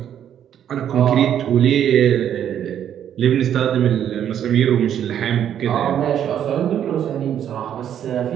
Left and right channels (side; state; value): left; quieter; 9.8 dB